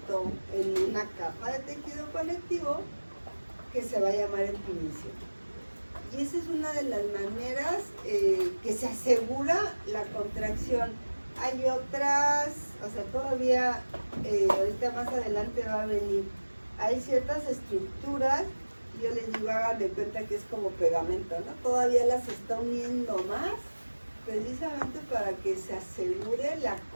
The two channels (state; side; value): inverted; both; correlation -1.00